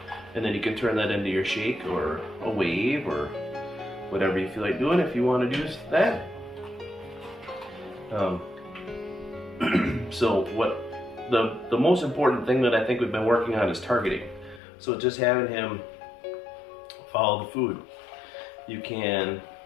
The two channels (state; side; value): drops out; right; at 14.6 s